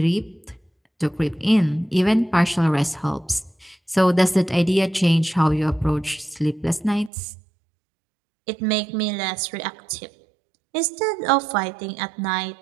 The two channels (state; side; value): drops out; left; at 7.1 s